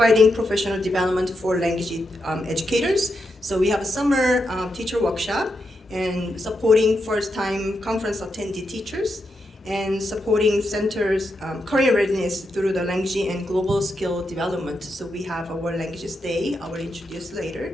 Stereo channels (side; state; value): both; normal; correlation 0.84